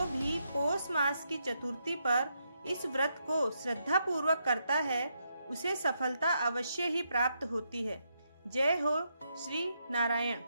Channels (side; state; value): both; inverted; correlation -0.80